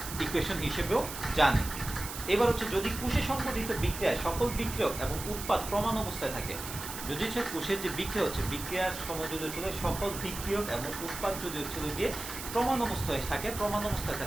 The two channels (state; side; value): noise; right; hiss, 9 dB below the sound